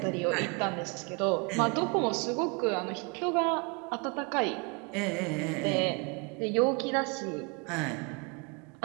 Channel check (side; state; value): left; quieter; 32.4 dB